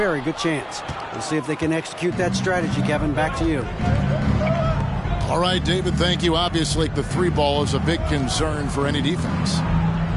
good chance. We'll see if they can execute that strategy, Kevin. Back to you. All right, David, thank you. Obviously, the three ball is a big concern for any defense.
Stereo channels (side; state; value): both; identical; correlation 1.00